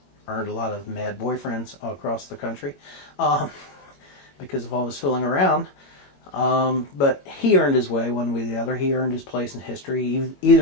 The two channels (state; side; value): late; right; 21 ms